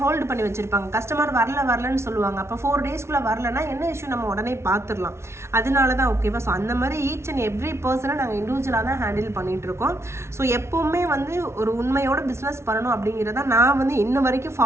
ஹோல்டு பண்ணி வச்சுருப்பாங்க. கஸ்டமர் வரலன்னு சொல்லுவாங்க. அப்போ 4 daysக்குள்ளே வரலன்னா என்ன இஷ்யூ இஷ்யூ நம்ம உடனே பார்த்துடலாம். அதனால தான் ஓகேவா. ஸோ அந்த மாதிரி ஈச் அண்ட் எவ்ரி பர்சனை நாங்கள் இண்டிவிஜுவலாக தான் ஹேண்டில் பண்ணிட்டு இருக்கோம். ஸோ எப்போவுமே வந்து ஒரு உண்மையோட பிஸ்னஸ் பண்ணணும் அப்படிங்கிறத நான் வந்து இன்ன வரைக்கும்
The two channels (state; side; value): late; left; 0.13 ms